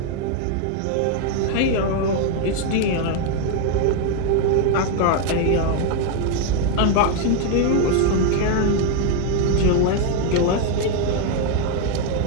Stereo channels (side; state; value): both; different; correlation 0.01